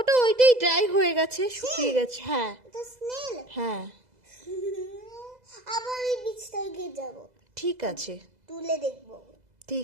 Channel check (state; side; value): late; left; 2.0 ms